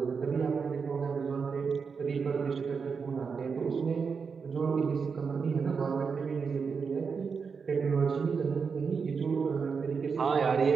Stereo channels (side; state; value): left; quieter; 5.6 dB